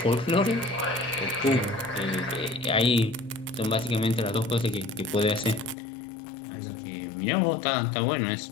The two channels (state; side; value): drops out; right; at 5.8 s